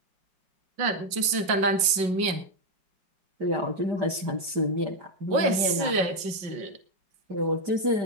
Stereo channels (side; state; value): left; late; 5.5 ms